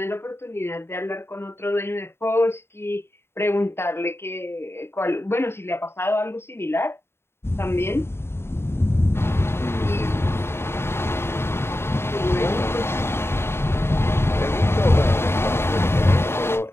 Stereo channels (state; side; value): late; right; 0.12 ms